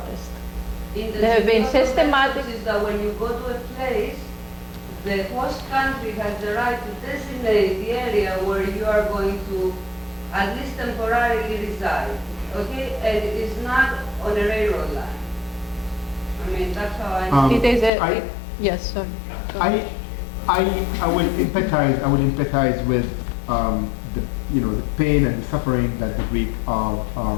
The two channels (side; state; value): right; drops out; at 17.9 s